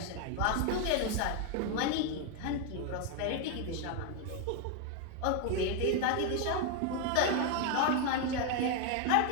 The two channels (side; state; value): both; different; correlation 0.01